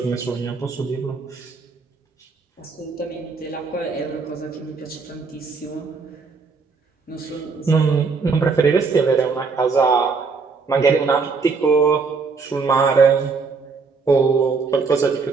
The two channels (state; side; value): quieter; left; 4.7 dB